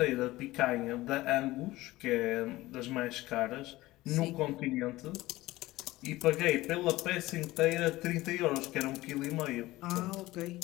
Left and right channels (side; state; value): right; quieter; 18.2 dB